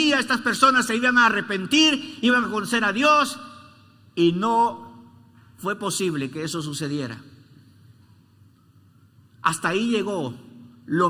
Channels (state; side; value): identical; both; correlation 1.00